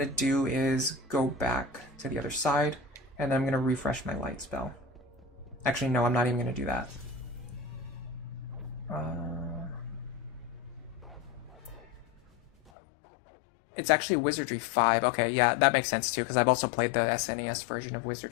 to do is go back to the other side, and then I'm going to refresh my light spell. Actually, no, I'm not even going to do that. It's actually Wizardry 5. Okay, yeah, that makes sense too, because I've also played the SNES version of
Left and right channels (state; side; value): drops out; right; at 12.7 s